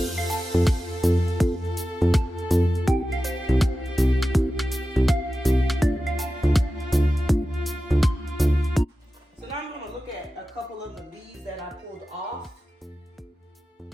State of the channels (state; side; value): normal; both; correlation 0.93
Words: So now I'm going to look at a couple of the leaves that I pulled off